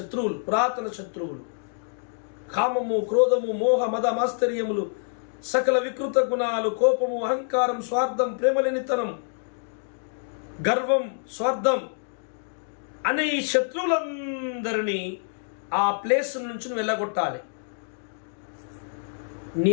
పురాతన శత్రువులు, కామము, క్రోధము, మోహ, మద, మాస్తర్యములు, సకల వికృత గుణాలు, కోపము, అహంకారం, స్వార్థం, ప్రేమలేనితనం, గర్వం, స్వార్థం అనే ఈ శత్రువులందరినీ ఆ ప్లేస్ నుంచి నువ్వు వెళ్ళగొట్టాలి. నీ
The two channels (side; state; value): right; silent; digital silence